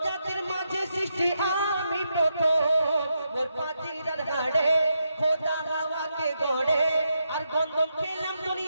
জাতির মাঝে সৃষ্টি আমি প্রথম। মোর পাচিরার হাড়ে খোদা হাওয়াকে গড়ে, আর গন্ধম খেলাম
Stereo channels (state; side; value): inverted; both; correlation -0.83